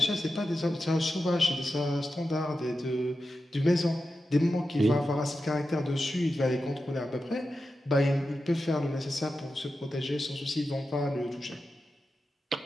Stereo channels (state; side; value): normal; both; correlation 0.91